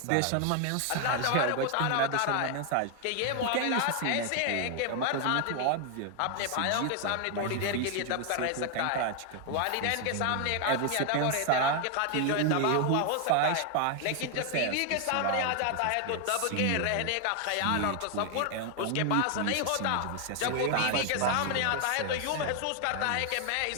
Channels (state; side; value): different; both; correlation 0.00